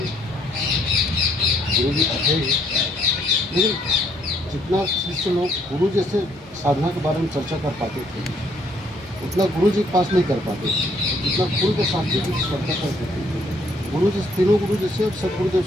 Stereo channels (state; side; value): normal; both; correlation 0.67